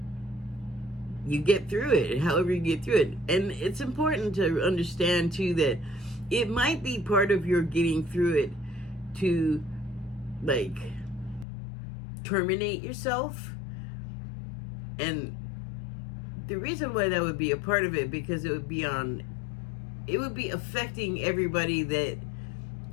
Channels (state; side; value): drops out; right; at 11.5 s